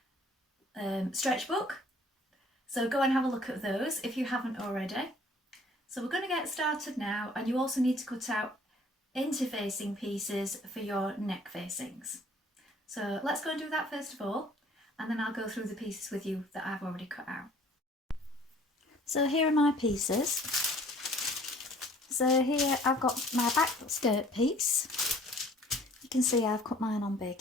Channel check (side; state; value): both; normal; correlation 0.54